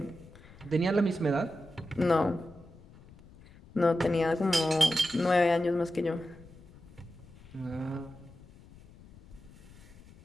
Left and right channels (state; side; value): noise; left; rumble, 22 dB below the sound